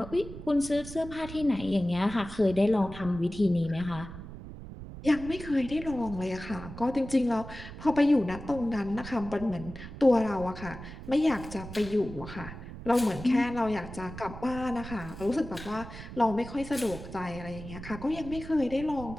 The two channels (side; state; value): right; noise; rumble, 12 dB below the sound